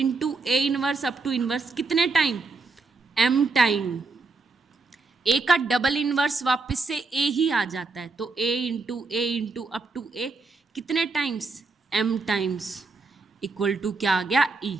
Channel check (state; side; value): quieter; left; 3.9 dB